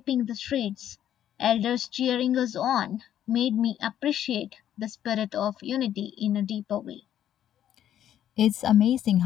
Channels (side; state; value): right; quieter; 10.8 dB